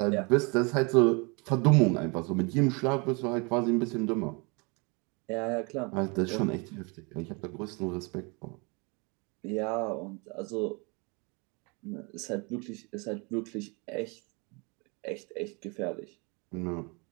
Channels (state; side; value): quieter; left; 30.7 dB